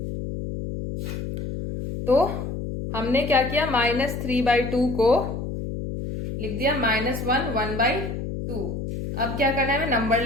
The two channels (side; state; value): left; noise; hum, 5 dB below the sound